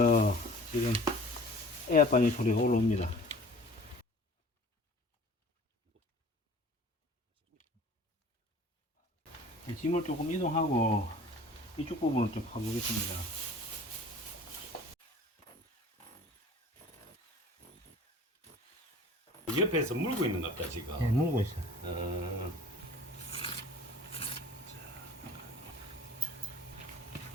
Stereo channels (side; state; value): both; normal; correlation 0.46